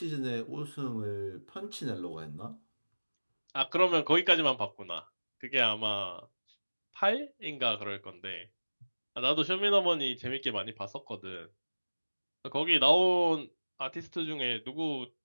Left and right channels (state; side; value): inverted; both; correlation -1.00